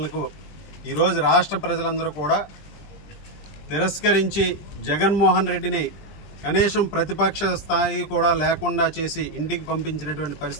ఈరోజు రాష్ట్ర ప్రజలందరూ కూడా తిరస్కరించి జగన్మోహన్ రెడ్డిని కనీసం ప్రతిపక్ష స్థాయి కూడా లేకుండా చేసి ఇంటికి పంపించినటువంటి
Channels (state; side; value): late; right; 20 ms